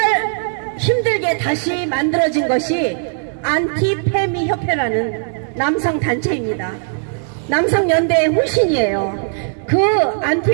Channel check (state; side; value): silent; left; digital silence